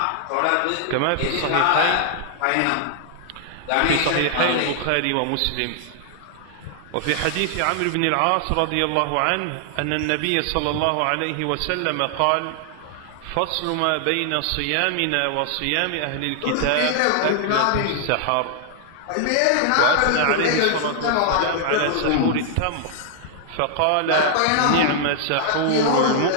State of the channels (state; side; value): different; both; correlation 0.00